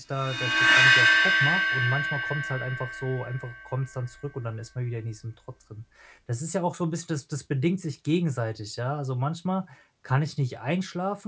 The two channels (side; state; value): both; identical; correlation 1.00